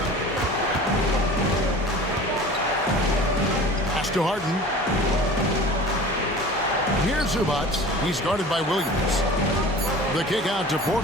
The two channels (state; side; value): normal; both; correlation 0.40